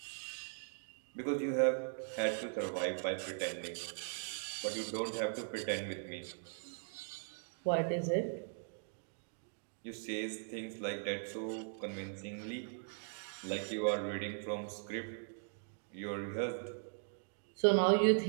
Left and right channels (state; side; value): silent; left; digital silence